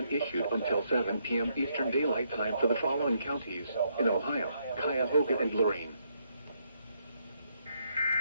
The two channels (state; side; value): inverted; both; correlation -0.75